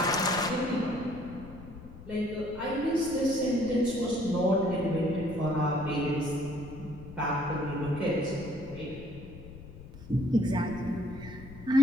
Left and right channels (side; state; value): left; noise; rumble, 15 dB below the sound